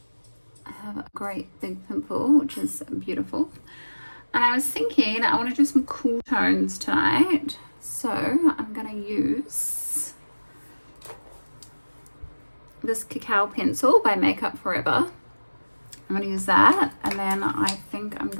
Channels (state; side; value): inverted; both; correlation -1.00